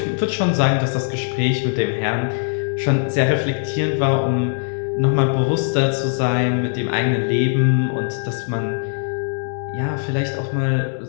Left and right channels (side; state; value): right; silent; 65 dB below the other